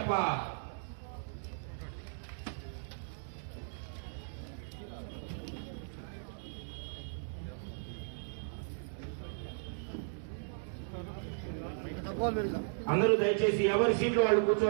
అందరూ దయచేసి ఎవరి సీట్లు వాళ్ళు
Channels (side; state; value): left; silent; digital silence